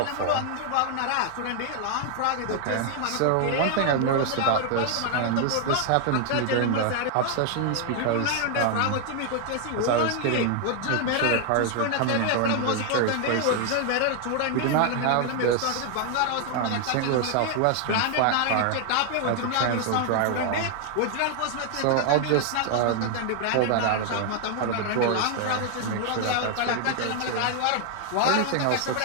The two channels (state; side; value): different; both; correlation 0.00